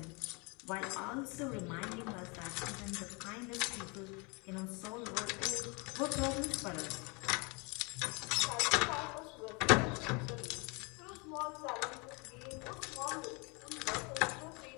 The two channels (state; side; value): quieter; right; 30.2 dB